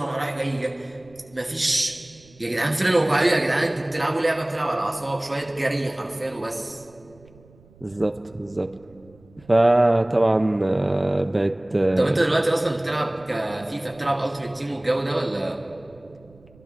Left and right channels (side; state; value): right; noise; rumble, 27 dB below the sound